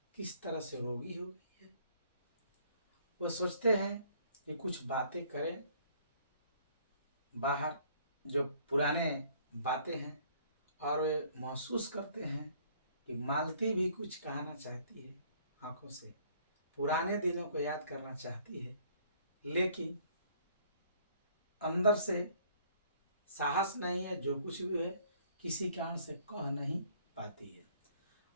किस तरह से रोगी हो गई है। वो सोचते हैं कि कुछ बातें करें, बाहर जो पुराने बातें हैं, और वे महसूस करते हैं कि मालती भी कुछ कहना चाहती है, आंखों से पुराने दिनों को याद करना चाहती है, लेकिन अंदर से साहस नहीं है। जो कुछ भी है किसी कारण से कह नहीं पाती है।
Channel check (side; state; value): both; inverted; correlation -0.60